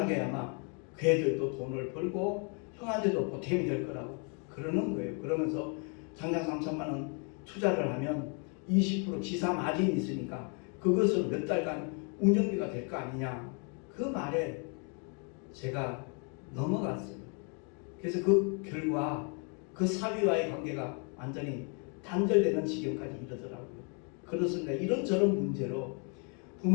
아마 그 애들도 돈을 벌고 형한테도 보탬이 될 거라고 그러는 거예요. 그러면서 당장 3천만 원 투자를 하면 20% 지사 마진이 있으니까 그것을 몇 달간 운영비가 될 거 아니냐. 그 말에 제가 넘어갔어요. 그래서 그 결과 그 사위와의 관계가 완전히 단절되는 지경까지 이르더라고요. 그렇습니다. 이런저런 문제로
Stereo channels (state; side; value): quieter; right; 37.6 dB